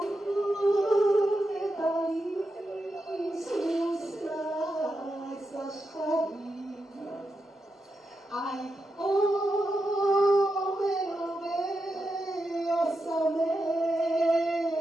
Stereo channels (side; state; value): both; normal; correlation 0.87